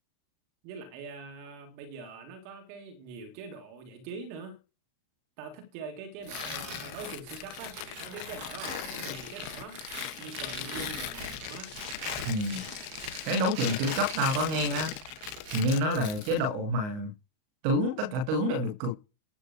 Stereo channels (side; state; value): left; late; 38 ms